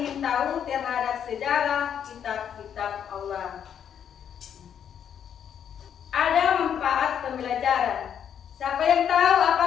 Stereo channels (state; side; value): quieter; right; 8.7 dB